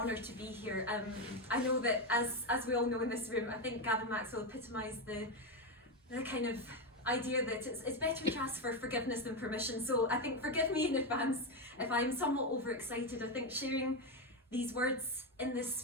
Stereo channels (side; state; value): both; normal; correlation 0.10